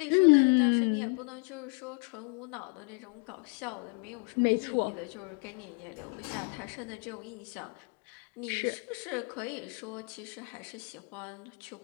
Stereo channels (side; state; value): right; quieter; 35.4 dB